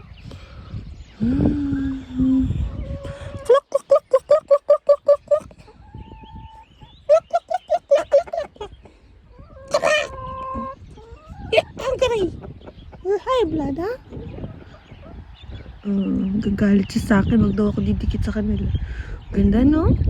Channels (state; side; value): identical; both; correlation 1.00